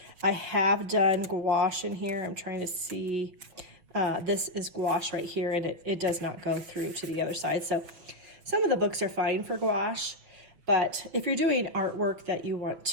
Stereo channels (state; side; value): late; left; 6.0 ms